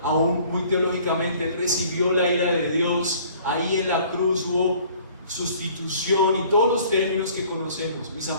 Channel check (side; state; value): both; inverted; correlation -0.54